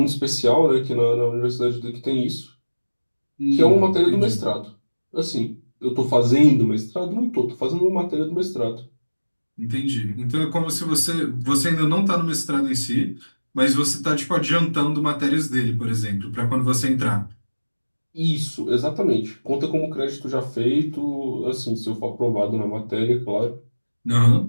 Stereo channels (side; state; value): both; inverted; correlation -1.00